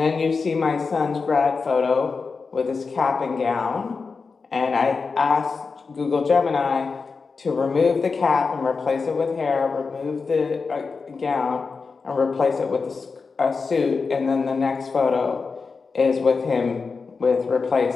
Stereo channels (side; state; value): right; quieter; 4.7 dB